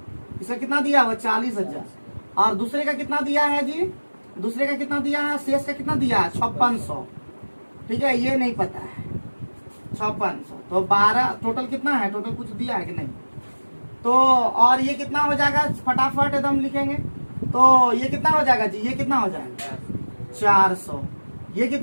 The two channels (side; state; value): both; inverted; correlation -1.00